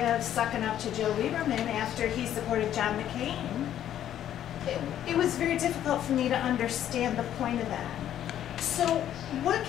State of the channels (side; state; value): right; quieter; 11.1 dB